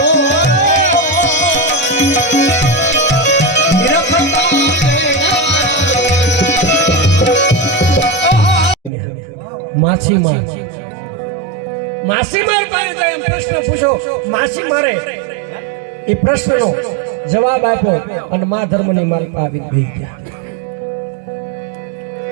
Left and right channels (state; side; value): drops out; left; at 8.9 s